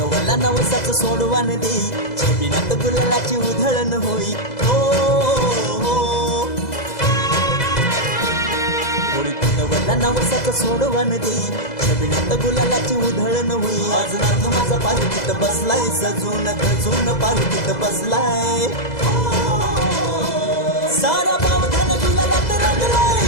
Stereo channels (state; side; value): late; right; 2.0 ms